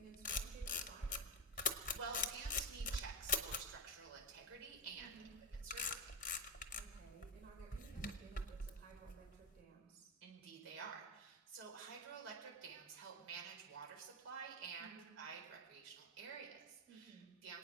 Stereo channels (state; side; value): normal; both; correlation 0.10